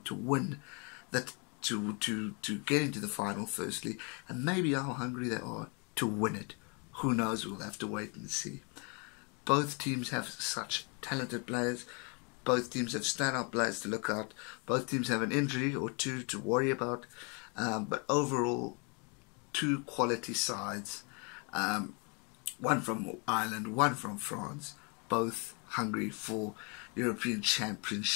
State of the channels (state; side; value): quieter; right; 33.9 dB